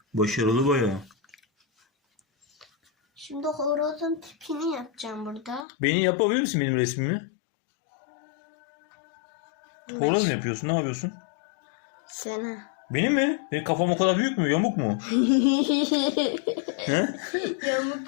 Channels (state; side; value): drops out; right; at 5.7 s